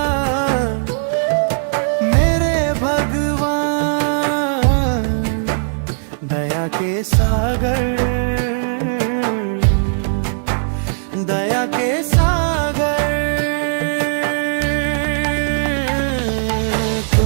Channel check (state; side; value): silent; left; 67 dB below the other